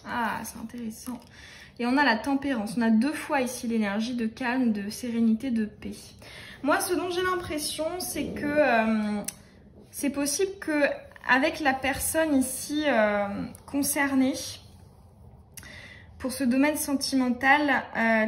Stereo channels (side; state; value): both; identical; correlation 1.00